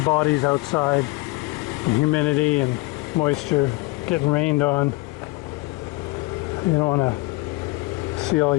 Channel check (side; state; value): right; quieter; 23.2 dB